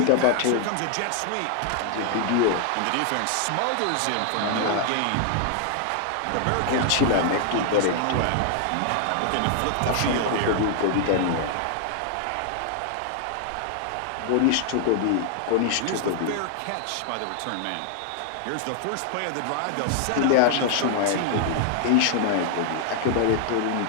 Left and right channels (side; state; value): both; different; correlation 0.00